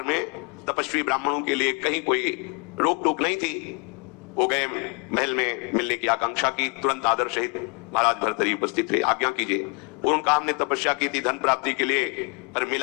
में तपस्वी ब्राह्मणों के लिए कहीं कोई रोक टोक नहीं थी। वो गए महल में मिलने की आकांक्षा की, तुरंत आदर सहित महाराज भर्तृहरि उपस्थित थे, आज्ञा कीजिए। और उनका हमने तपस्या की थी धन प्राप्ति के लिए, पर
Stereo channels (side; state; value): right; quieter; 32.5 dB